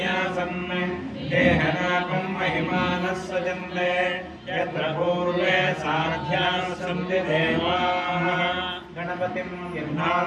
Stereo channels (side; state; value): both; identical; correlation 1.00